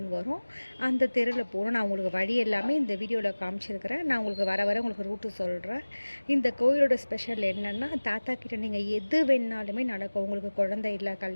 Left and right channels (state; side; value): inverted; both; correlation -1.00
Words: வரும். அந்த தெருவில் போகணும். நான் உங்களுக்கு வழி எல்லாமே இந்த வீடியோவில் காமிச்சிருக்கிறேன். நான் உங்களுக்கு வர உங்களுக்கு ரூட்டு சொல்கிறேன். இந்த கோயிலோட ஸ்பெஷல் என்னென்னா, தாத்தா கிட்ட நீங்கள் எது வேணாலுமே நடக்கும். உங்களுக்கு குழந்தை இல்லை,